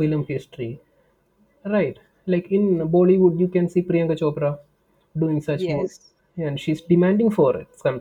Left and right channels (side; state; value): both; identical; correlation 1.00